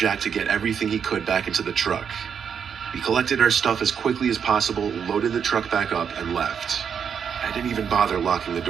to get everything he could back into the truck. We collected our stuff as quickly as possible, loaded the truck back up, and left. I didn't even bother locking the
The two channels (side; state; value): left; quieter; 7.3 dB